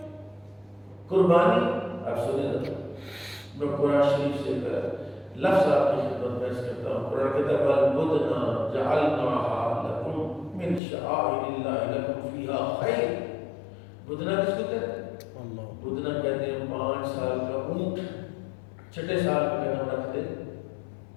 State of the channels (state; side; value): drops out; right; at 10.8 s